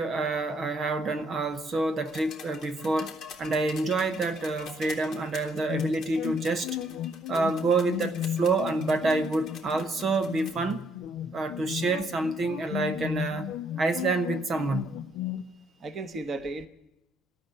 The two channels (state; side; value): normal; both; correlation 0.69